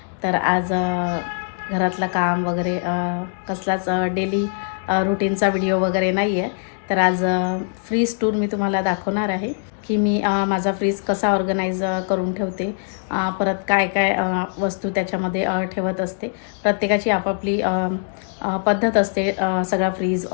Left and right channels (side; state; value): right; silent; digital silence